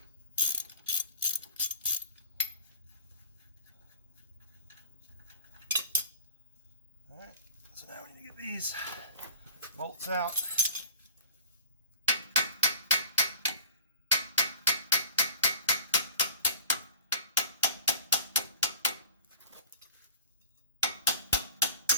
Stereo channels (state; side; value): inverted; both; correlation -0.42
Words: Alright, so now we need to get these bolts out.